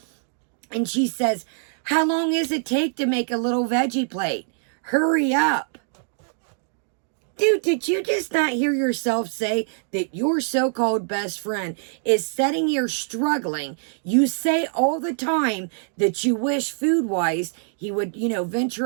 And she says, how long does it take to make a little veggie plate? Hurry up. Dude, did you just not hear yourself say that your so-called best friend is sitting here struggling? You say all the time that you wish food-wise he would,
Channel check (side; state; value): left; silent; digital silence